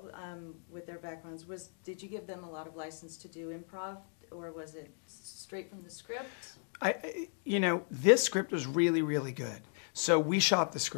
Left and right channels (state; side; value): silent; right; 54 dB below the other